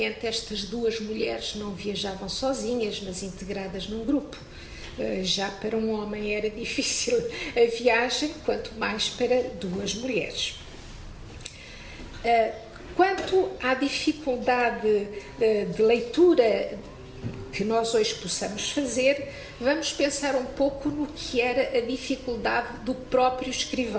estas duas mulheres não viajavam sozinhas, mas integradas num grupo. Já para um homem era difícil a viagem, quanto mais para duas mulheres. Quanto à dificuldade de leitura que nós hoje possamos fazer, vamos pensar um pouco no que era a dificuldade do próprio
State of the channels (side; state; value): both; identical; correlation 1.00